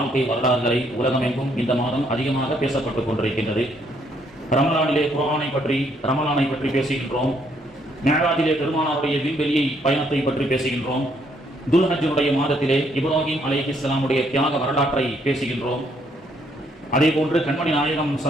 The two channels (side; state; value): both; normal; correlation 0.70